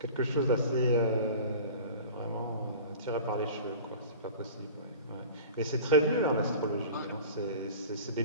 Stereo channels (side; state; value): both; inverted; correlation -0.38